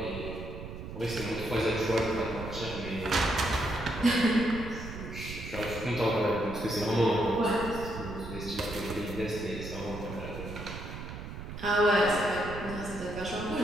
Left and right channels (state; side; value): noise; right; rumble, 9 dB below the sound